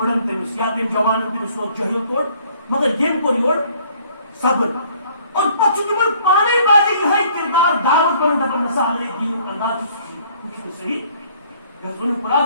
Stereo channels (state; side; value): inverted; both; correlation -0.59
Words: تمس یا تم جوان تمس سو جہل کوڑ مگر یم کو یور صبر اور پچھ تمن پانے بازی یہ کردار دعوت بن دپن مثال ہے دین انداز کچھ صحیح گزن